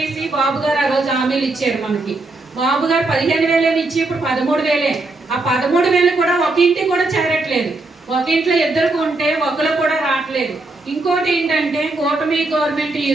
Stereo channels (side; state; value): left; quieter; 3.1 dB